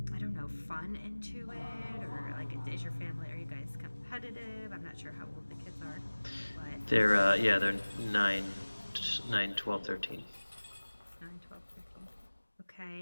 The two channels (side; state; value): both; inverted; correlation -1.00